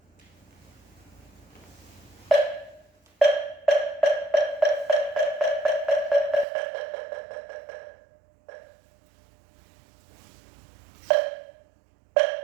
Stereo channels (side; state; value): left; drops out; at 6.5 s